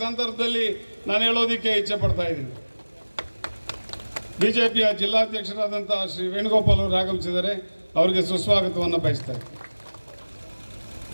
ಸಂದರ್ಭದಲ್ಲಿ ನಾನು ಹೇಳೋದಕ್ಕೆ ಇಚ್ಛೆ ಪಡ್ತಾ ಇದ್ದೀನಿ. BJPಯ ಜಿಲ್ಲಾಧ್ಯಕ್ಷರಾದಂಥ ಶ್ರೀ ವೇಣುಗೋಪಾಲ್ ಅವರು ಆಗಮಿಸಿದ್ದಾರೆ. ಅವರಿಗೆ ಸುಸ್ವಾಗತವನ್ನು ಬಯಸ್ತಾರೆ.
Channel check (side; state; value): both; inverted; correlation -1.00